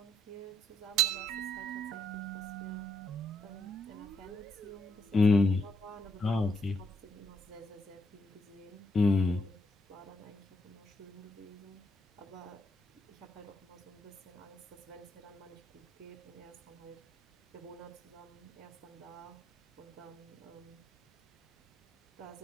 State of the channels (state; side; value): normal; both; correlation 0.74